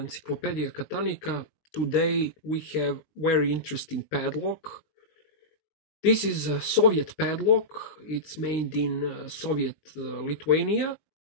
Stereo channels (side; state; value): right; late; 19 ms